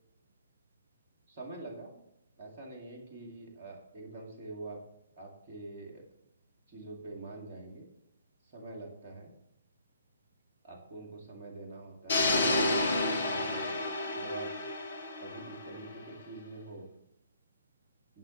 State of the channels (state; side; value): inverted; both; correlation -0.63